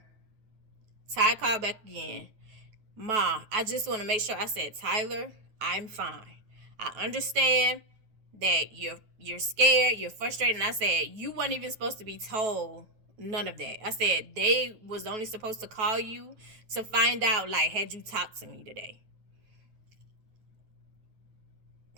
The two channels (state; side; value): late; left; 9.2 ms